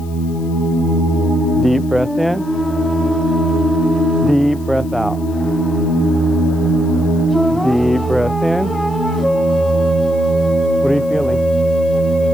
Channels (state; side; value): noise; left; hiss, 25 dB below the sound